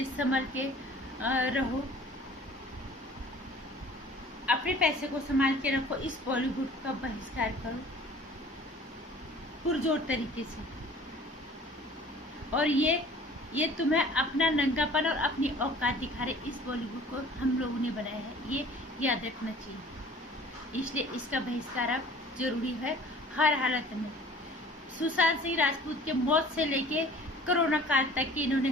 संभल के रहो, अपने पैसे को संभाल के रखो। इस बॉलीवुड का बहिष्कार करो पुरजोर तरीके से। और ये तुम्हें अपना नंगापन और अपनी औकात दिखा रहे, इस बॉलीवुड को हम लोगों ने बनाया है, ये याद रखना चाहिए। इसलिए इसका बहिष्कार अब जरूरी है हर हालत में। सुशांत सिंह राजपूत के मौत से लेके कोरोना काल तक की इन्होंने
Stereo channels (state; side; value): normal; both; correlation 0.48